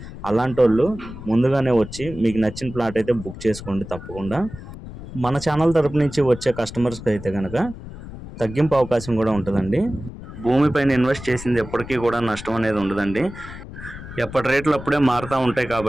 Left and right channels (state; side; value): noise; left; rumble, 13 dB below the sound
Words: అలాంటి వాళ్ళు ముందుగానే వచ్చి మీకు నచ్చిన ప్లాట్ అయితే బుక్ చేసుకోండి తప్పకుండా. మన ఛానల్ తరపు నుంచి వచ్చే కస్టమర్స్కి అయితే కనుక తగ్గింపు అవకాశం కూడా ఉంటుందండి. భూమిపైన ఇన్వెస్ట్ చేసింది ఎప్పటికీ కూడా నష్టం అనేది ఉండదండి. ఎప్పటి రేట్లు అప్పుడే మారుతూ ఉంటాయి